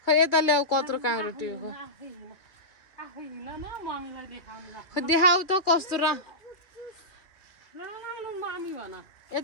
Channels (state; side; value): late; right; 2.3 ms